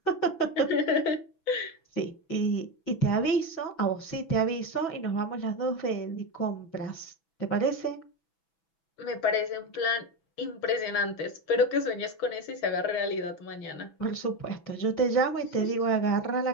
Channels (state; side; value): late; right; 6.1 ms